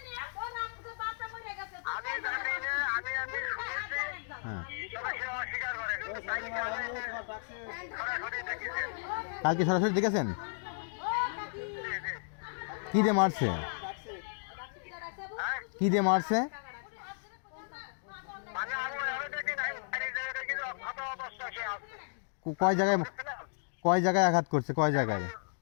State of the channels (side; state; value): right; silent; digital silence